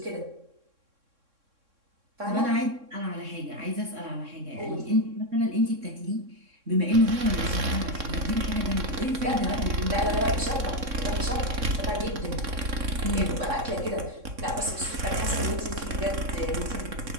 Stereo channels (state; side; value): late; left; 3.6 ms